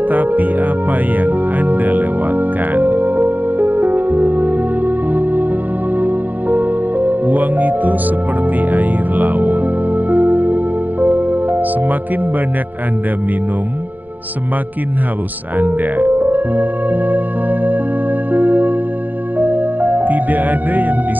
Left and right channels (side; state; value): left; late; 0.085 ms